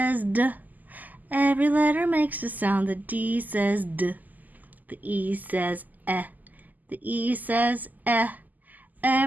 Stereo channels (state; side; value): late; left; 0.082 ms